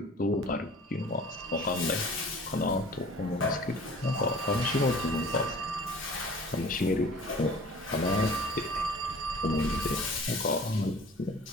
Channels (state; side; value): normal; both; correlation 0.46